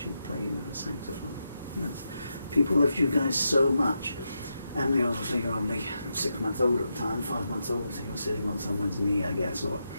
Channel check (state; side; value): inverted; both; correlation -0.85